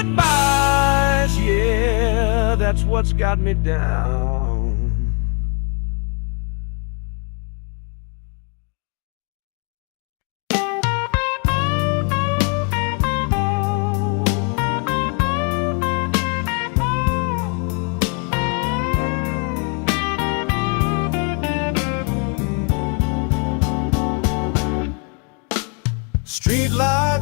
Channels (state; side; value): quieter; right; 37.9 dB